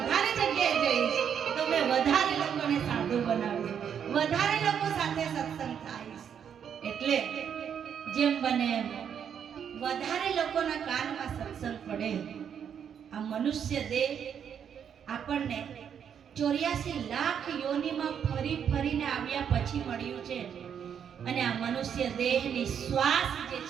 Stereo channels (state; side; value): quieter; left; 8.1 dB